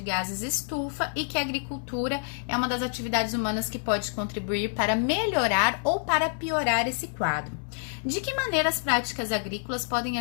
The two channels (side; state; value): right; silent; digital silence